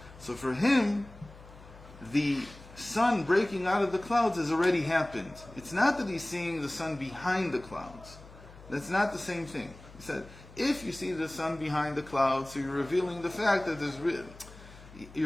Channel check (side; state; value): left; noise; hum, 19 dB below the sound